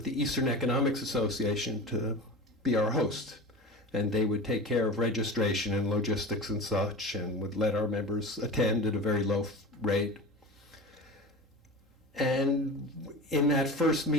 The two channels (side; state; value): both; normal; correlation 0.31